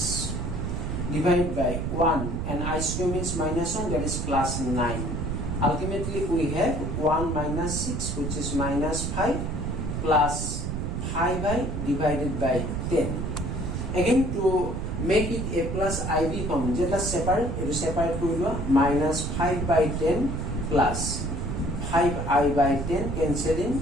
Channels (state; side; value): noise; right; rumble, 3 dB below the sound